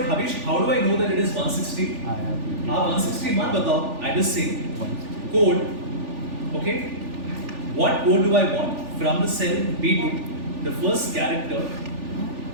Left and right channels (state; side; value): late; left; 3.4 ms